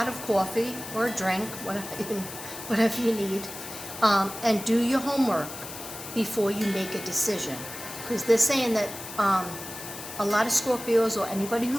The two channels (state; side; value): noise; left; hiss, 11 dB below the sound